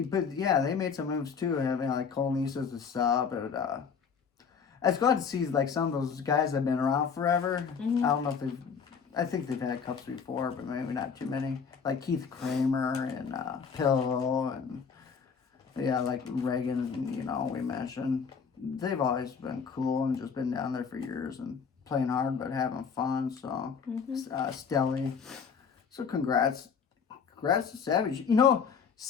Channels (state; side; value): quieter; right; 6.2 dB